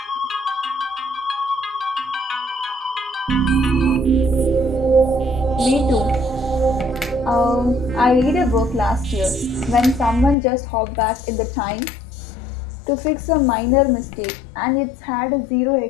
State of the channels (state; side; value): drops out; right; at 10.4 s